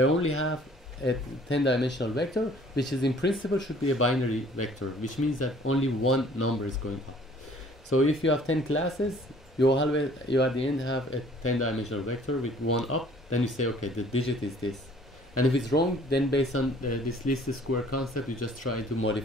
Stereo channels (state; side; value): normal; both; correlation 0.55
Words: have a 10-dimensional vector, which is in principle should be a binary vector, which means that only one number is going up. So if you have 10 classes, you at the end have a 10-dimensional vector with one up. Then you say, okay, the digit is this. And if it's wrong, then based on this least square concept, you just try to